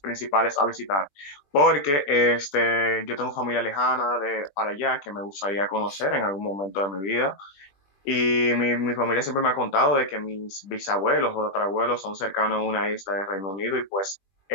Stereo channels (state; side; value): late; right; 20 ms